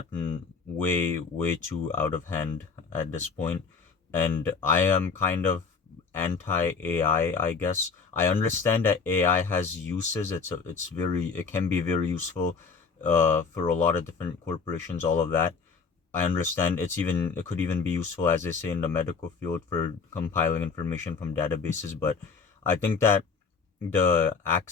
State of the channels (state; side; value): quieter; right; 5.1 dB